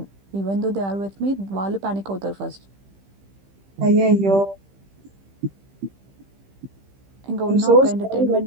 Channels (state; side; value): late; left; 15 ms